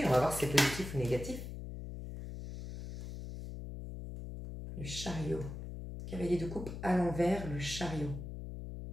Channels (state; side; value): noise; left; hum, 8 dB below the sound